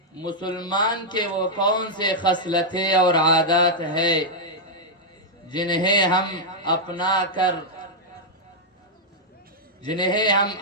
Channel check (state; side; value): normal; both; correlation -0.05